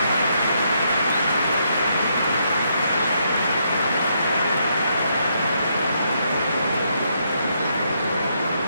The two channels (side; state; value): both; inverted; correlation -0.76